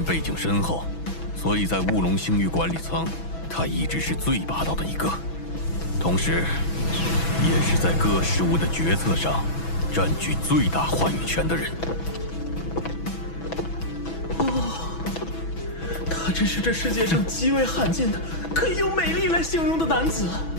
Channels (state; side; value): late; right; 6.1 ms